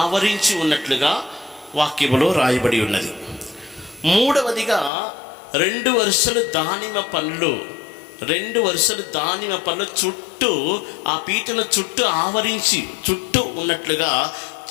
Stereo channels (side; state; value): right; drops out; at 4.9 s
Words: ఆవరించి ఉన్నట్లుగా వాక్యములో రాయబడి ఉన్నది. మూడవదిగా 2 వరుసలు దానిమ్మ పండ్లు చుట్టూ ఆ పీటల చుట్టూ ఆవరించి చుట్టూ ఉన్నట్లుగా